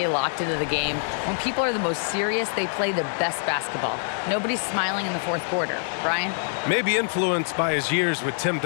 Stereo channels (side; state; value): right; silent; digital silence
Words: locked into the game. When people are the most serious, they play the best basketball. Nobody's smiling in the fourth quarter." Brian? Maybe influenced by his years with Tim